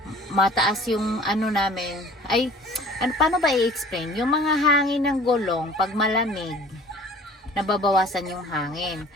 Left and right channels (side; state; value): both; normal; correlation 0.48